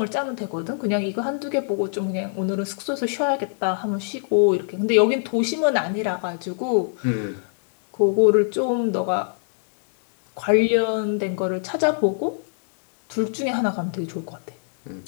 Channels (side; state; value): right; silent; digital silence